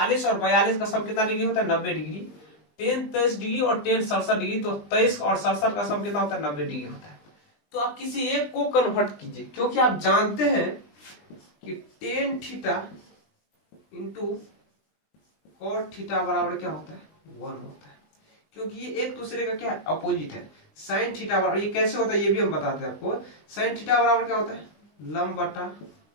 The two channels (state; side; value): late; right; 20 ms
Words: और 42 का सम कितना डिग्री होता है, 90 डिग्री। टेन 23 डिग्री और टेन 67 डिग्री, तो 23 और 67 का सम कितना होता है, 90 डिग्री होता है। तो आप किसी एक को कन्वर्ट कीजिए, क्योंकि आप जानते हैं कि tan theta into cot theta बराबर क्या होता है, 1 होता है, क्योंकि ये एक दूसरे का क्या है, अपोजिट है। साइन थीटा बराबर, ये कैसे होता है ये भी हम बताते हैं आपको। साइन थीटा बराबर क्या होता है, लंब बटा